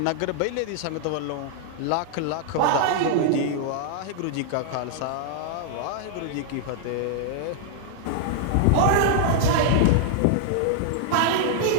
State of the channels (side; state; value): both; different; correlation -0.01